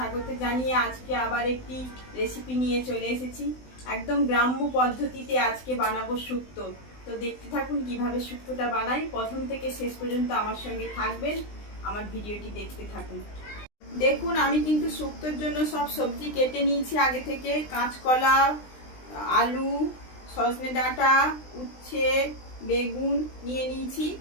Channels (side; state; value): right; late; 20 ms